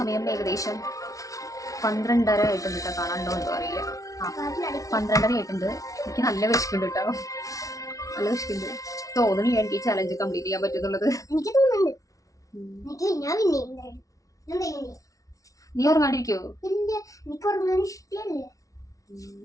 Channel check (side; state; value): right; late; 0.17 ms